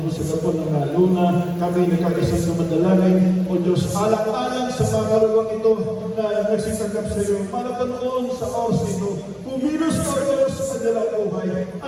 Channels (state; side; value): identical; both; correlation 1.00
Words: sa Gapon ng Luna, kami nagkakisang sumadalangin, O Diyos, alang-alang sa mga karuwang ito na nagsitanggap sa iyo, para panoon sa oras ito, kumilos ka o Diyos sa kanilang buhay,